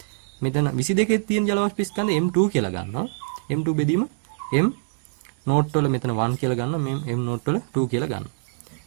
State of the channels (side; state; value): left; silent; digital silence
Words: මෙතන 22 තියෙන ජල වාෂ්ප ස්කන්ධය M2 කියලා ගන්නවා. M2 බෙදීම M නෝට් වල මෙතන 1 කියලා ගන්නවා. මේ M නෝට් වල 2 කියලා ගන්නවා.